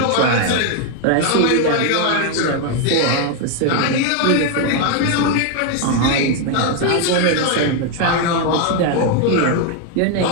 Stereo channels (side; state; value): both; different; correlation 0.01